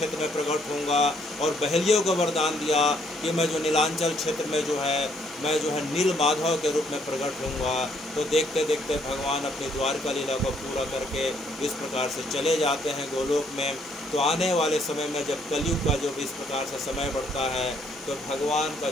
में प्रकट होऊंगा, और बहेलियों को वरदान दिया कि मैं जो नीलांचल क्षेत्र में जो है मैं जो है नील माधव के रूप में प्रकट होऊंगा। तो देखते देखते भगवान अपनी द्वारका लीला को पूरा करके इस प्रकार से चले जाते हैं गोलोक में। तो आने वाले समय में जब कलयुग का जो भी इस प्रकार से समय बढ़ता है तो भगवान का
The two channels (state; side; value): normal; both; correlation 0.68